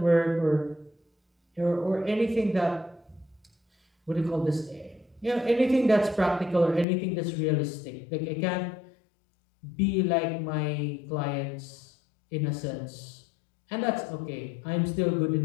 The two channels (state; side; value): drops out; right; at 6.9 s